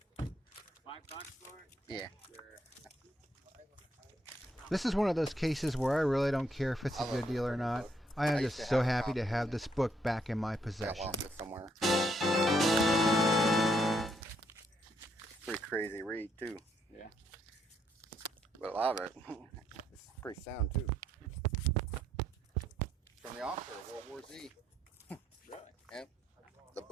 $5 for it? Yeah. Sure. This is one of those cases where I really don't care if it's a good deal or not. I am just so happy to have this book back in my possession. Somewhere. Pretty crazy read too. Yeah. But a lot of it, it's pretty sound too. From the author of World War Z. Really? Yep. The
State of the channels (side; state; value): both; normal; correlation 0.74